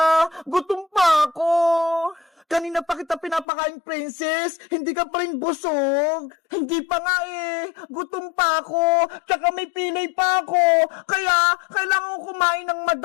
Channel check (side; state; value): right; drops out; at 3.5 s